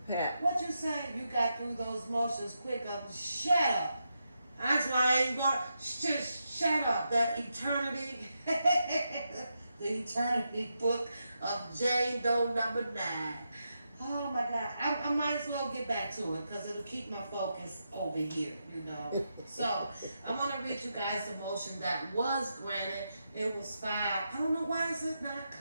Pat. What you say? You got through those motions quick. Shut up. That's why I ain't going. Just shut up. The eternity, the eternity book of Jane Doe number 9. Oh my God. I might as well get back to it because it'll keep my focus over here, you know. So I'm gonna read you guys the motion that was granted. It was filed. I don't know why is it not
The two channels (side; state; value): both; inverted; correlation -0.85